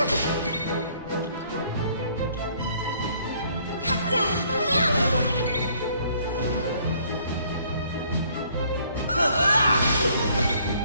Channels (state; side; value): inverted; both; correlation -0.63